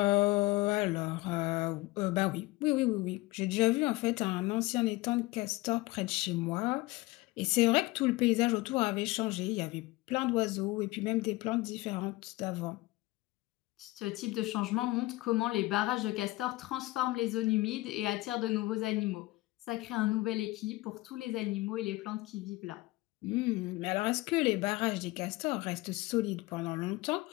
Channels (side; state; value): right; quieter; 20.5 dB